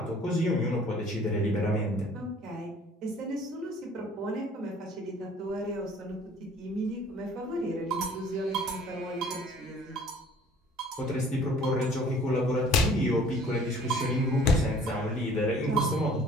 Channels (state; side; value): normal; both; correlation 0.53